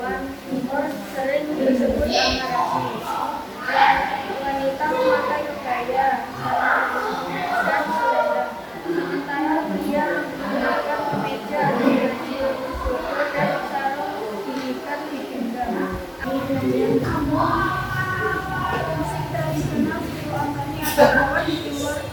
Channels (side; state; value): both; identical; correlation 1.00